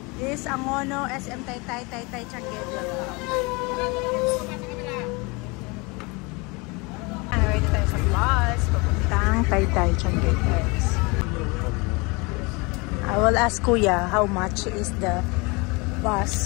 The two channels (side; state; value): right; quieter; 27.4 dB